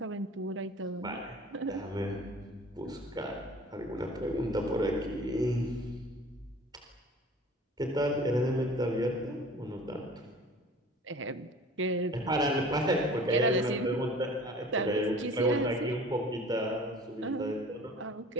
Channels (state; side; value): normal; both; correlation 0.46